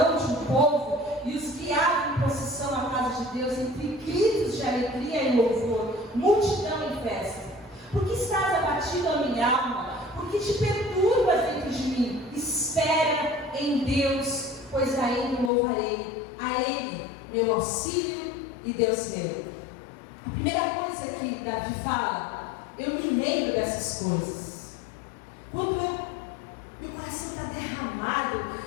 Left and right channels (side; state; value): right; drops out; at 15.5 s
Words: de um povo, e os guiava em procissão à casa de Deus, entre gritos de alegria e louvor, multidão em festa. Porque estás abatido a minha alma? Porque te perturbas dentro de mim? Espera em Deus, pois a Ele louvarei, a Ele meu auxílio e Deus meu. A primeira coisa que Davi fala: eu me lembro dessas coisas. Quando meu coração está derramado